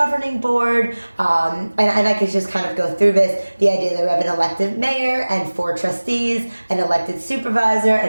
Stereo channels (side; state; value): both; inverted; correlation -1.00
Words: board, and I could just kind of go through this. The idea that we have an elected mayor and 4 trustees, an elected supervisor